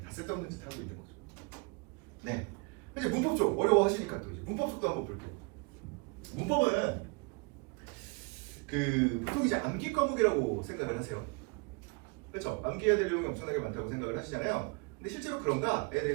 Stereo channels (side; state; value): left; quieter; 31.0 dB